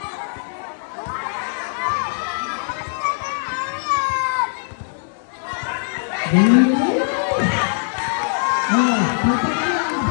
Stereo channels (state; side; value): silent; right; 64 dB below the other